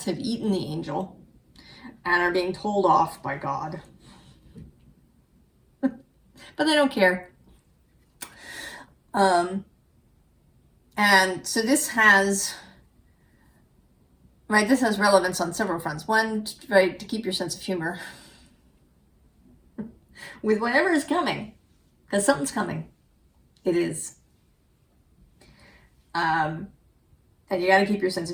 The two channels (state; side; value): identical; both; correlation 1.00